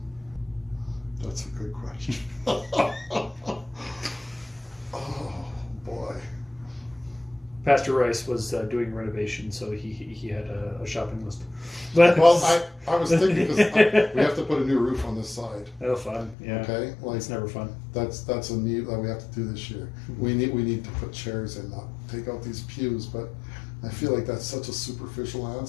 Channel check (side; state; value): right; drops out; at 16.4 s